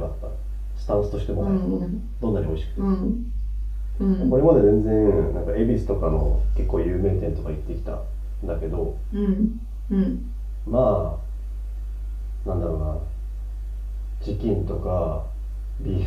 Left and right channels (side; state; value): both; identical; correlation 1.00